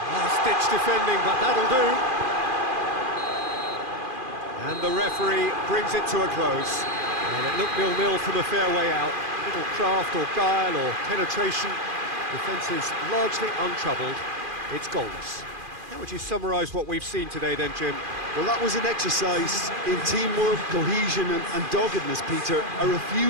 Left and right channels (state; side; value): late; left; 2.4 ms